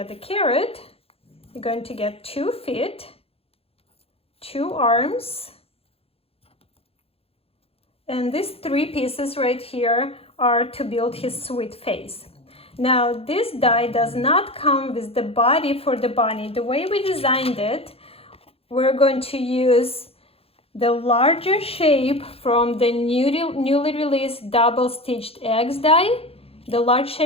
the carrot. You're going to get 2 feet, 2 arms, and these 3 pieces right here are to build his sweet face. Now this die does not come with the body for the bunny. The way we designed it, we're going to use the larger shape from the newly released double stitched eggs die, the large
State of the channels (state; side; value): late; right; 0.28 ms